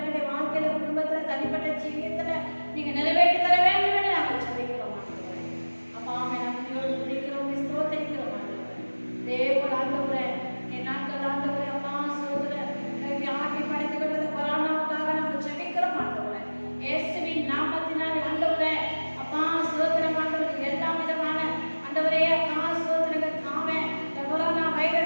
வாழ்க்கையில குடும்பத்துல தனிப்பட்ட ஜீவியத்துல நீங்க நிறைவேற்றி தர வேண்டும் என்று நாங்கள் சொல்லிக்கிறோம் ஆண்டவரே. அப்பா நன்றியோடு துதிக்கிறோம், ஸ்தோத்திரிக்கிறோம் ஆண்டவரே. தேவன் ஆண்டவரே என் நாட்கள் ஆண்டவரே அப்பா சோதர ஆட்டி படைத்துக் கொள்வது கொரோனாவுக்காக நாங்கள் ஜெபிக்கிறோம் ஆண்டவரே. இயேசுவின் நாமத்தினாலே ஆண்டவரே அப்பா சோதரம் ஆண்டவரே எல்லா விதமான ஆண்டவரே அப்பா சோதரங்கள் ஆமே இந்த கொரோனா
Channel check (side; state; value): both; inverted; correlation -1.00